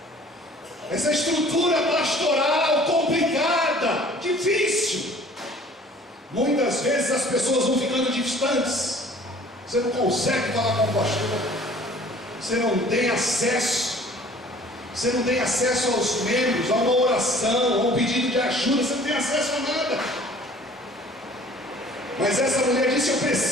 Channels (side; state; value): both; normal; correlation 0.51